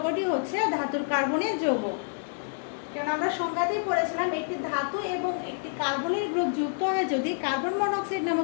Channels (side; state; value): right; silent; digital silence